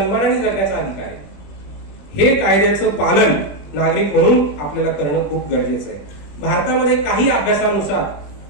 जगण्याचा अधिकार आहे. हे कायद्याचं पालन नागरिक म्हणून आपल्याला करणं खूप गरजेचं आहे. भारतामध्ये काही अभ्यासानुसार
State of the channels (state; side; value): late; right; 20 ms